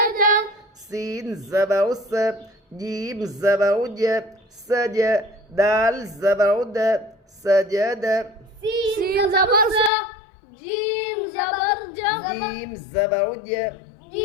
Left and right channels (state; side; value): drops out; right; at 9.9 s